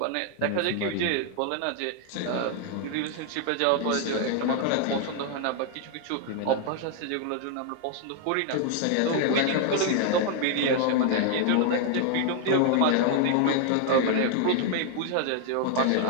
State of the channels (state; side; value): different; both; correlation 0.00